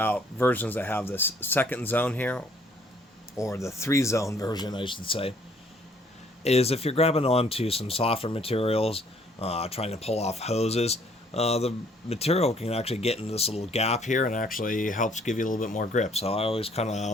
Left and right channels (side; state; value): both; normal; correlation 0.62